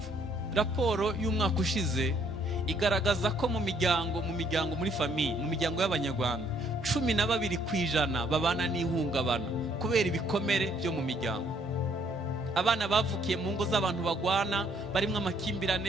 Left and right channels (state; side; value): normal; both; correlation 0.66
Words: Raporo y'umwaka ushize igaragaza ko mu miryango muri famiye, mu miryango y'Abanyarwanda 12% babana n'ihungabana kubera ibikomere byo mu miryango. Abana bavukiye mu ngo z'abantu bagwana, barimwe